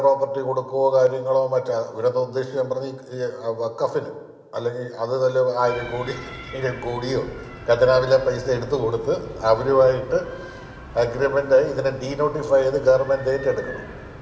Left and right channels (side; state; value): both; identical; correlation 1.00